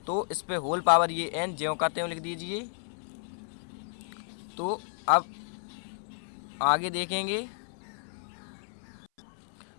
तो इस पे होल पावर ये n ज्यों का त्यों लिख दीजिए। तो अब आगे देखेंगे,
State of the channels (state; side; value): silent; right; 56 dB below the other